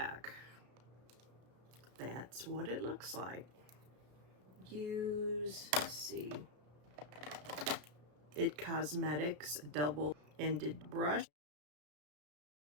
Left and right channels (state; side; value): late; left; 33 ms